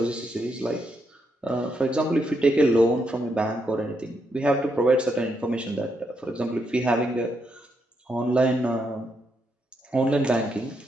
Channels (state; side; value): normal; both; correlation 0.79